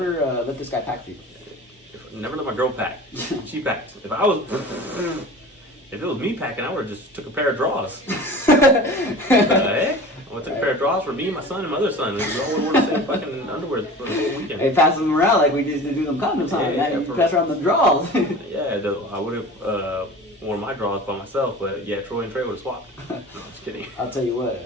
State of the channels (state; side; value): normal; both; correlation 0.38